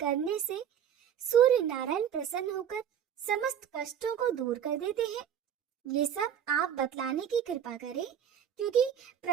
से सूर्य नारायण प्रसन्न होकर समस्त कष्टों को दूर कर देते हैं? ये सब आप बतलाने की कृपा करें, क्योंकि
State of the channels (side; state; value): left; quieter; 9.0 dB